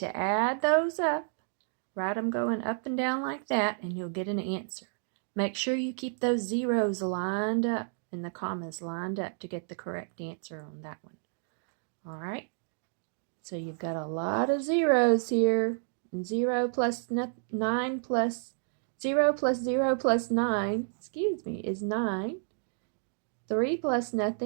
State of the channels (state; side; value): silent; left; digital silence